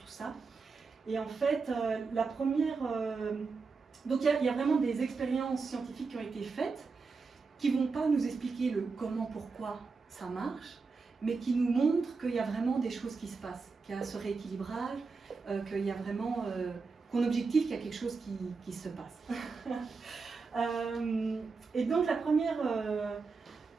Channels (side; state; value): left; quieter; 4.6 dB